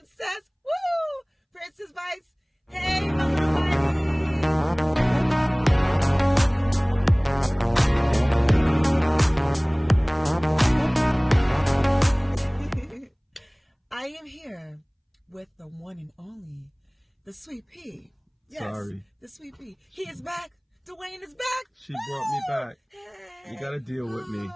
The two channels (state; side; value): identical; both; correlation 1.00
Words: woo! Princess bites. Hey, I am here with the one and only, the Sweet Pea. Yes, sorry. The Sweet Pea. He is back. Dwayne is back. She brought me back. Hey, you gotta deal with me.